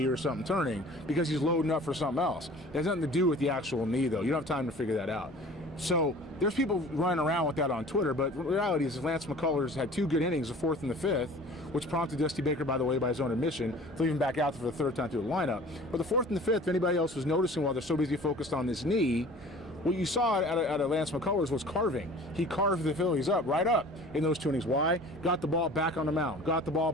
or something turning because he's loading up for something else. It has nothing to do with the actual knee, though. You don't have time to figure that out. So there's people running around with that on Twitter, but the reality is Lance McCullers had two good innings, the fourth and the fifth, which prompted Dusty Baker, by the way, by his own admission, to leave him back out for the third time through the lineup. But the fourth and the fifth, if anybody else was noticing while they're so busy focused on this knee, what you saw out of Lance McCullers was carving. He carved the Phillies right up in those two innings. Why? Got the ball back on the mound, got the ball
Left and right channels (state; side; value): normal; both; correlation 0.45